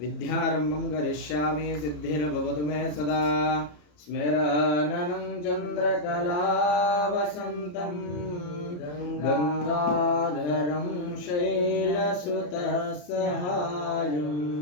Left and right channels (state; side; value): late; right; 34 ms